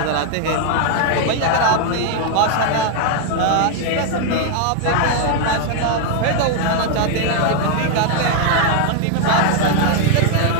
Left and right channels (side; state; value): both; different; correlation 0.00